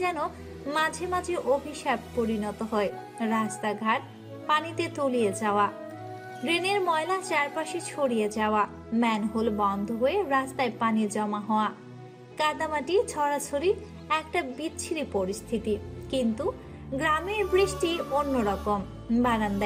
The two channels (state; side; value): identical; both; correlation 1.00